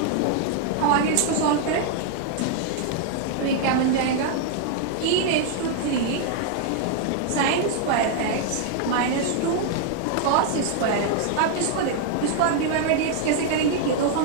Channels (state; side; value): different; both; correlation 0.00